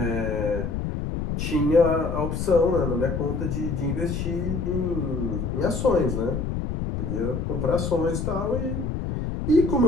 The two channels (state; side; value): noise; left; rumble, 2 dB below the sound